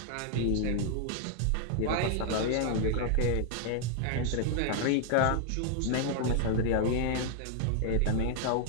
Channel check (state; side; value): different; both; correlation 0.00